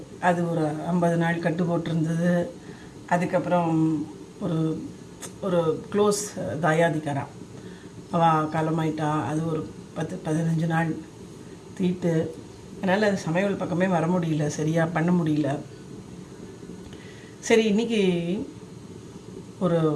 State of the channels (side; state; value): both; identical; correlation 1.00